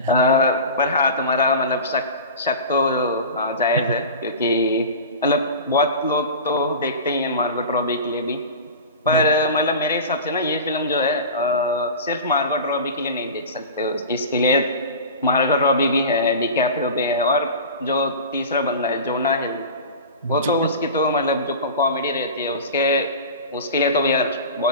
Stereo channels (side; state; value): both; inverted; correlation -0.33